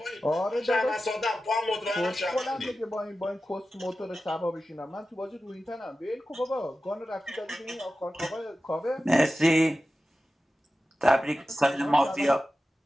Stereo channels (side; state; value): both; normal; correlation 0.94